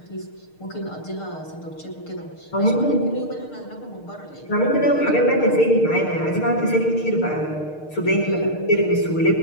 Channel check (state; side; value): late; right; 6.5 ms